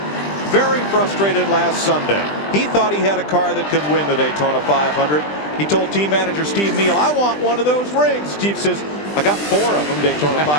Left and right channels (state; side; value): late; right; 20 ms